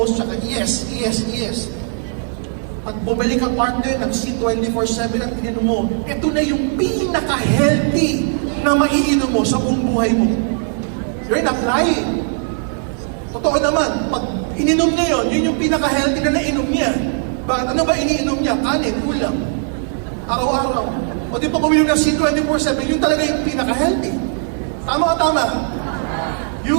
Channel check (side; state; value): left; silent; 56 dB below the other